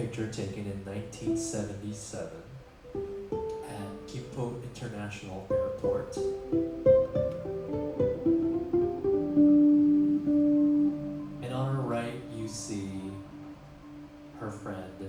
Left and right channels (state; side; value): identical; both; correlation 1.00